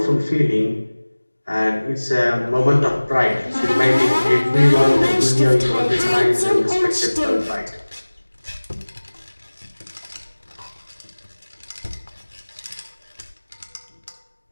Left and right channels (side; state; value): both; inverted; correlation -1.00